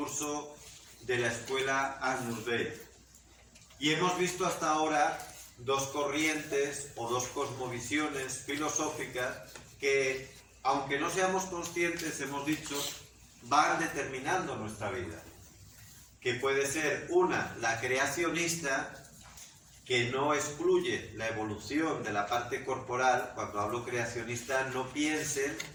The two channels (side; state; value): both; identical; correlation 1.00